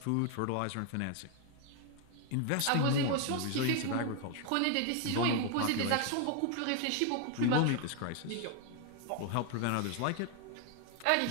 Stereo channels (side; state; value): both; different; correlation 0.00